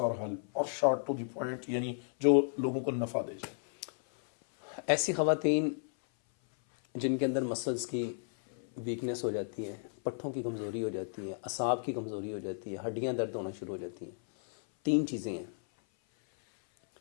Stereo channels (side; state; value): right; silent; 55 dB below the other